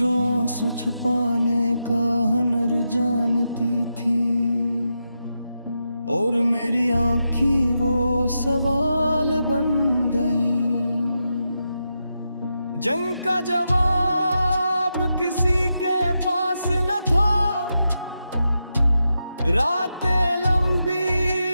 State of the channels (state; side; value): inverted; both; correlation -0.87